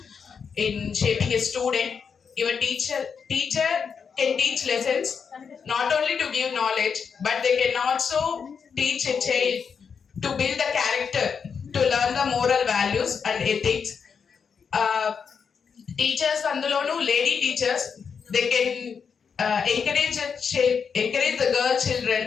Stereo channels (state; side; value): quieter; right; 6.3 dB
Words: in shaping a student. Your teacher can teach lessons not only to give knowledge, but they can also teach a child to build the character, to learn the moral values and ethics. Teachers andulonu lady teachers, they can encourage the girl children,